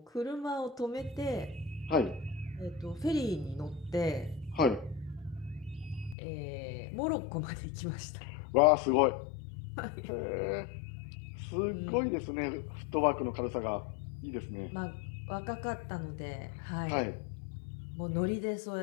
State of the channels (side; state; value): right; drops out; at 6.2 s